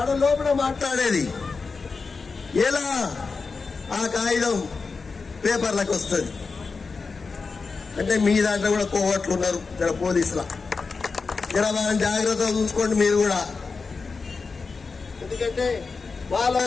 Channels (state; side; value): quieter; right; 4.5 dB